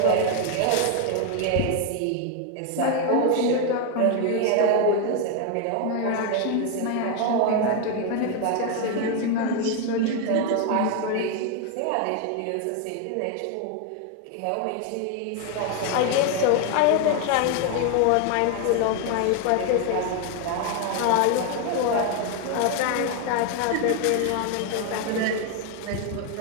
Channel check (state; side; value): different; both; correlation 0.01